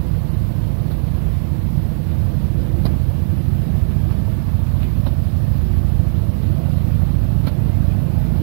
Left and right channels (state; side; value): silent; left; digital silence